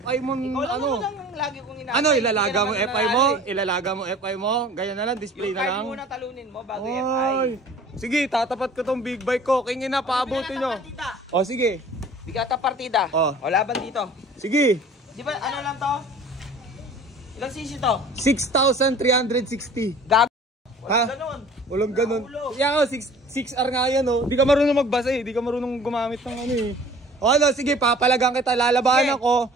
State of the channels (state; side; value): normal; both; correlation 0.47